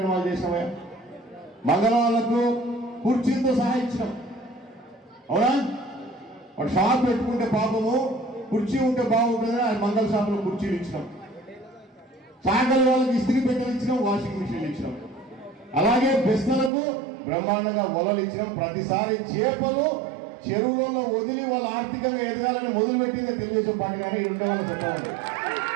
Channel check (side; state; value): left; drops out; at 16.7 s